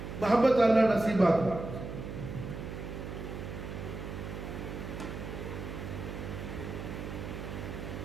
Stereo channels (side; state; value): right; noise; hum, 7 dB below the sound